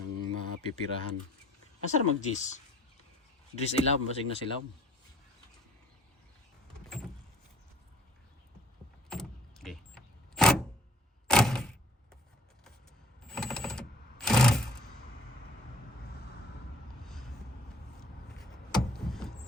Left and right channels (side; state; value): both; normal; correlation 0.54